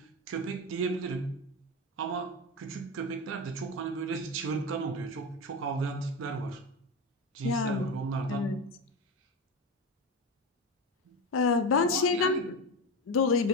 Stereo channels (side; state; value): both; normal; correlation 0.20